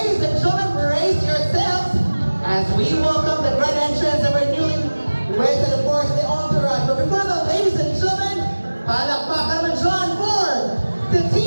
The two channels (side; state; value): both; inverted; correlation -1.00